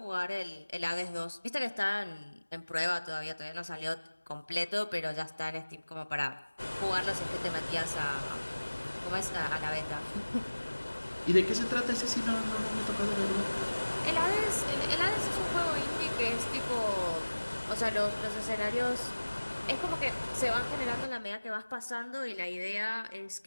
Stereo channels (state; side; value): inverted; both; correlation -1.00